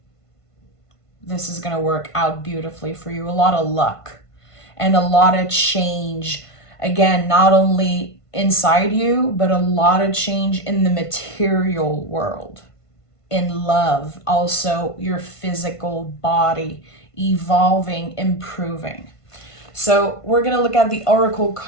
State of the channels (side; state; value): right; late; 1.5 ms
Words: this is going to work out beautifully for you. A lot of luck and a lot of change. Again, not only inside you, but a lot of change in the material world, in love, also your physical body, evolving, improving. So we're going to look at the oracle